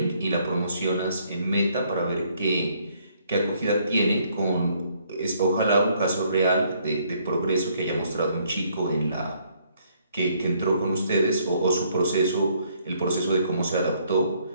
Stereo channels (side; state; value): both; inverted; correlation -0.67